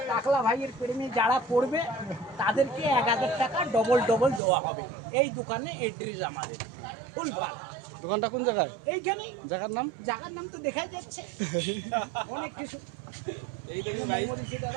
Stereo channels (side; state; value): left; drops out; at 4.4 s